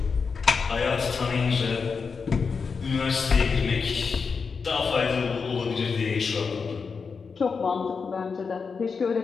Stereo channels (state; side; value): quieter; right; 5.3 dB